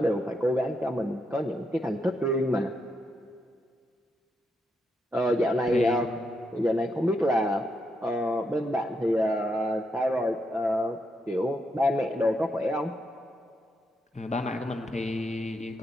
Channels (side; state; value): both; normal; correlation 0.81